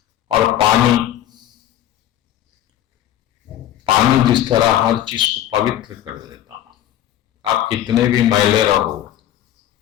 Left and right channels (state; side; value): quieter; right; 11.9 dB